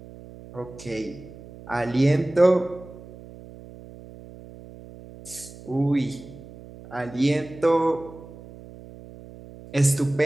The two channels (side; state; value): right; noise; hum, 18 dB below the sound